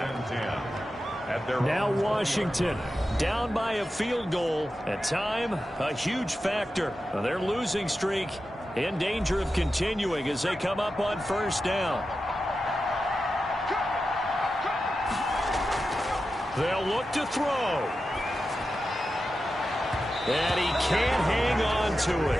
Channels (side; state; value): both; normal; correlation 0.91